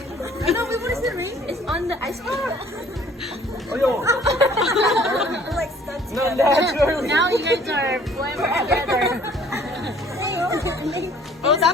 No, wait, what is the ring? It's on the ice cream. Oh, yo! We're like stuck No, together. naturally! Now you guys are forever together. Oh,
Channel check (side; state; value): both; normal; correlation 0.55